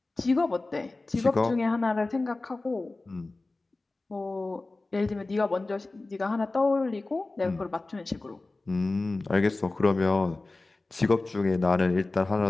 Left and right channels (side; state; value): right; quieter; 3.2 dB